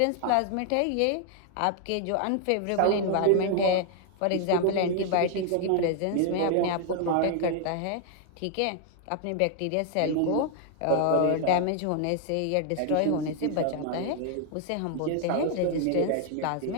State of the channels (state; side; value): different; both; correlation 0.00